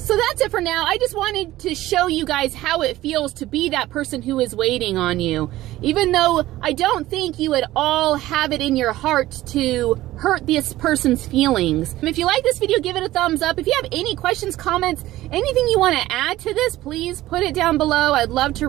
that's it for now. I just wanted to show you guys how it feels to be that person who is waiting on you. Even though I don't think you at all have it in your heart to hurt this person's feelings. If you like this video, give it a thumbs up. If you have any questions, comments, anything you want to add to this, please put it down below. I'd love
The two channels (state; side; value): quieter; left; 15.9 dB